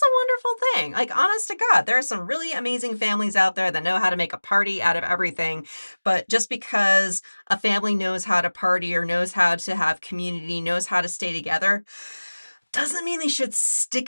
a wonderful thing. Like, honest to God, there are some really amazing families out there that know how to make a party out of everything. But just because a family knows how to party or knows how to have community, knows how to stay together, doesn't mean they should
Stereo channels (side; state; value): both; inverted; correlation -1.00